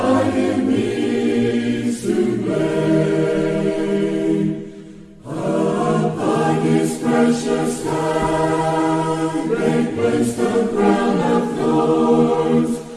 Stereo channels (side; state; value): both; identical; correlation 1.00